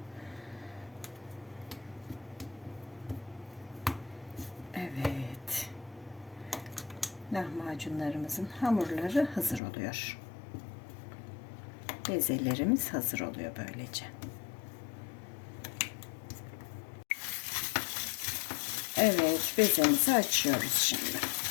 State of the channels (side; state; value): right; drops out; at 9.6 s